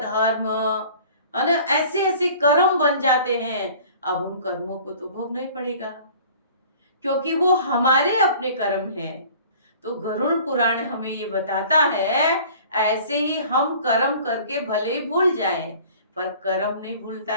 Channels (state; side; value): inverted; both; correlation -0.47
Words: है ना, ऐसे ऐसे कर्म बन जाते हैं। अब उन कर्मों को तो भोगना ही पड़ेगा क्योंकि वो हमारे अपने कर्म हैं। तो गरुड़ पुराण हमें ये बताता है ऐसे ही हम कर्म करके भले ही भूल जाएं पर कर्म नहीं भूलता